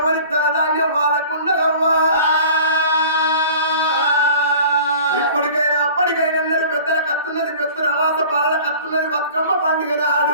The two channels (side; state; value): both; inverted; correlation -0.45